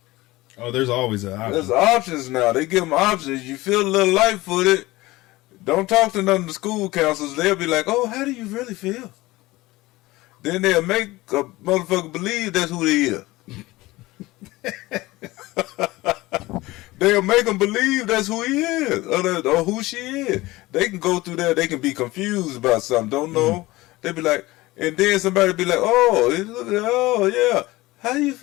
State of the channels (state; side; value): quieter; right; 19.6 dB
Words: Oh, there's always an option. There's options now. They give them options. You feel a little light-footed. Don't talk to none of the school counselors. They'll be like, oh, how do you really feel? Then they'll make a motherfucker believe that's who they is. They'll make them believe that's who he is or who she is. They can go through there. They can be confused about something. Don't know. They be like, and then somebody be like, oh, yeah. How you